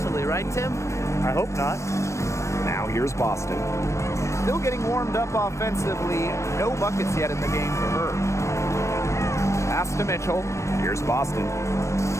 right, Tim? I hope not. Now here's Boston. Still getting warmed up offensively. No buckets yet in the game for her. Pass to Mitchell. Here's Boston.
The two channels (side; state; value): right; late; 0.14 ms